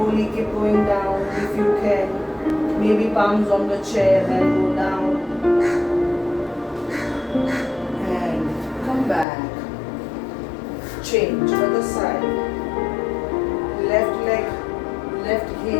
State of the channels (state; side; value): drops out; right; at 9.2 s